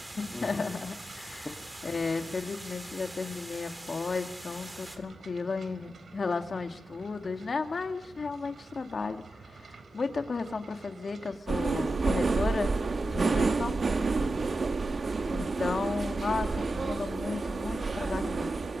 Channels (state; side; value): normal; both; correlation 0.90